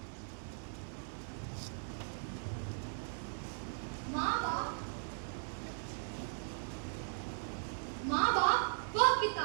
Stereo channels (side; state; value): left; silent; 52 dB below the other